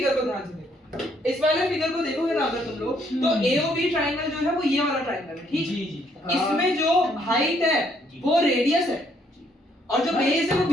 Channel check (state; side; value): normal; both; correlation 0.69